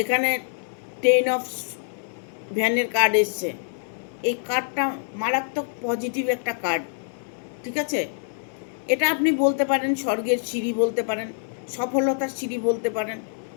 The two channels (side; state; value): right; silent; 60 dB below the other